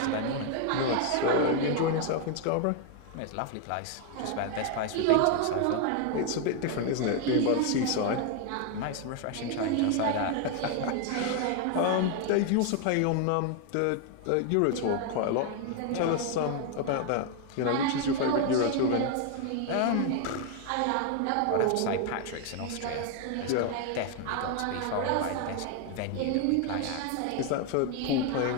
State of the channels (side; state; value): both; different; correlation 0.01